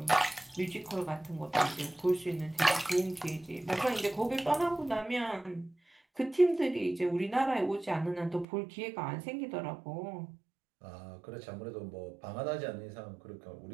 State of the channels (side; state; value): left; drops out; at 8.5 s